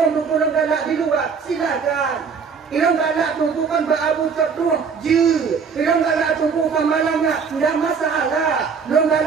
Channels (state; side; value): quieter; left; 5.9 dB